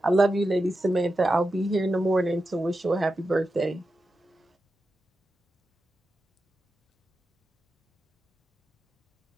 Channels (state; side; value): normal; both; correlation 0.90